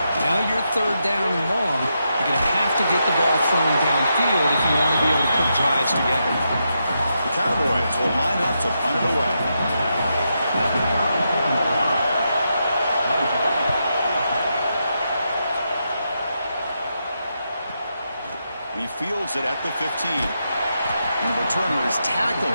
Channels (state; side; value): inverted; both; correlation -0.84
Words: Now you're third down and long. You're going to have to get the ball thrown downfield if you want to be able to put drives together. The Cowboys will line up to punt it away. He fields it at the 15. And the returner is